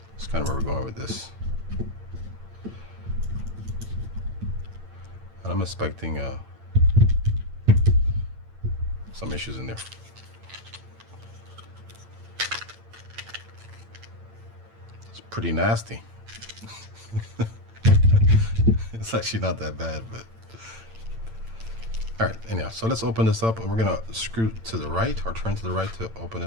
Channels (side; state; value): left; late; 8.9 ms